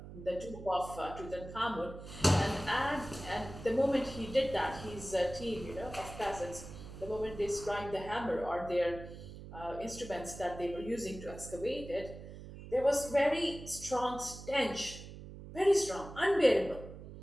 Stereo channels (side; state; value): right; noise; hum, 13 dB below the sound